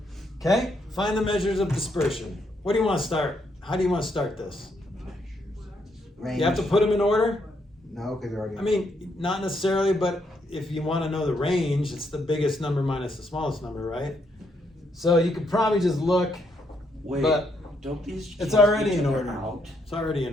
Okay, find the measures of dispersion. What do you want to start? How do you want to start this? Range. You have to put them in order? No, because they're already. I mean, not necessarily, but if you want to know the range, it's the biggest number minus the smallest number, right? So you could probably just look, Wait, but don't these? it's cancel already each in other order. out? It's already in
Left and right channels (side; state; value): both; normal; correlation 0.75